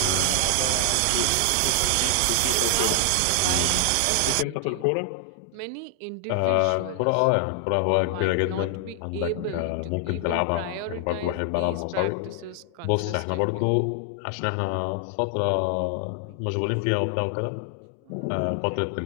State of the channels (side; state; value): both; different; correlation 0.00